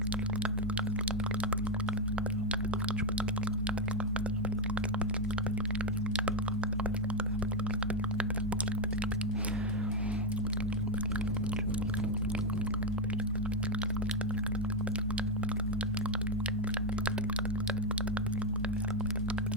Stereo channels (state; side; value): normal; both; correlation 0.03